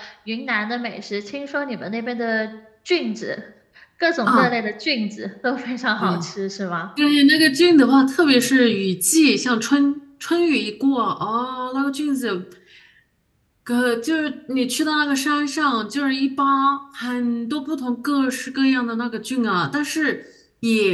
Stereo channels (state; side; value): identical; both; correlation 1.00